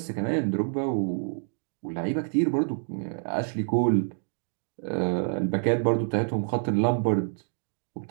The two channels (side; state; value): left; silent; 60 dB below the other